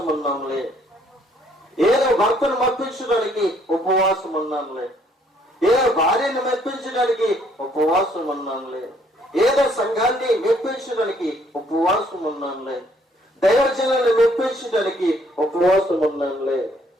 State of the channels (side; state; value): both; normal; correlation 0.65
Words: ఉన్నాములే, ఏదో భర్తను మెప్పించడానికి ఉపవాసం ఉన్నాములే, ఏదో భార్యను మెప్పించడానికి ఉపవాసం ఉన్నాములే, ఏదో సంఘాన్ని మెప్పించడానికి ఉపవాసం ఉన్నానులే, దైవజనాన్ని మెప్పించడానికి ఉపవాసం ఉన్నానులే.